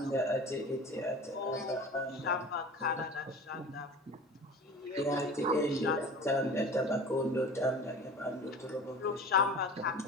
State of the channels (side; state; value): both; normal; correlation 0.37